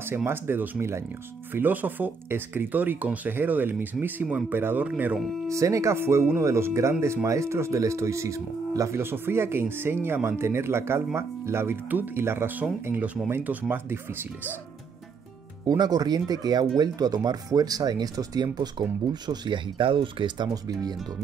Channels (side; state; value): left; quieter; 4.8 dB